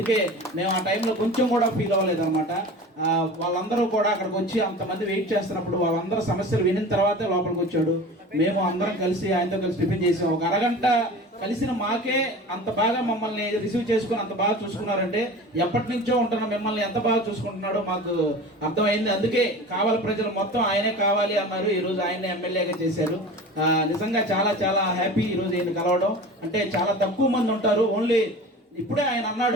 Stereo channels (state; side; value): normal; both; correlation 0.36